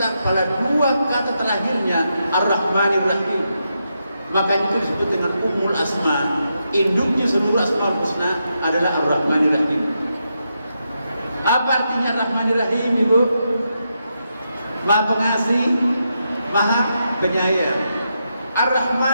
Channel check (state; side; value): inverted; both; correlation -0.84